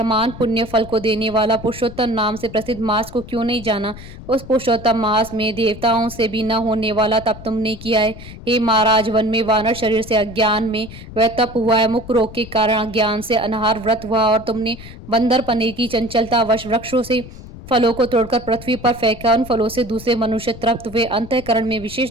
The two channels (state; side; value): noise; left; rumble, 15 dB below the sound